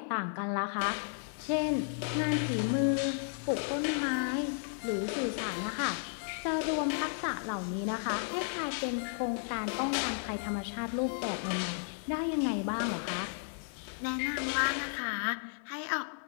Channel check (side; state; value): right; silent; 55 dB below the other